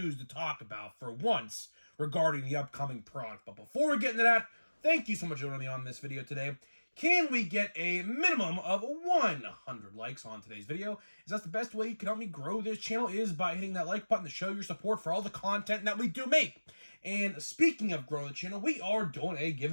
to talk about for once regarding the upcoming product. But before we get into that, thank you so much for joining me on this video today. Can we get a minimum of 100 likes on today's video? As that's the best way you can help me grow this channel is by hitting that like button to show your support for all the content that we do make. And speaking of growing the channel, we are doing a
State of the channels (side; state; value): both; inverted; correlation -1.00